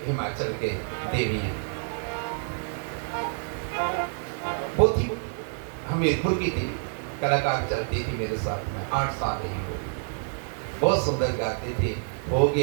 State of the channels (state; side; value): silent; left; 60 dB below the other